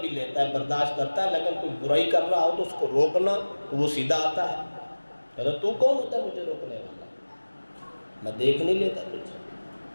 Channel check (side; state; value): both; inverted; correlation -1.00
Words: بھی لیتا ہے، برداشت کرتا ہے، لیکن کوئی برائی کر رہا ہو تو اس کو روکنا تو وہ سیدھا آتا ہے، کہتا تو کون ہوتا ہے مجھے روکنے والا، میں دیکھ نہیں لیتا تجھے۔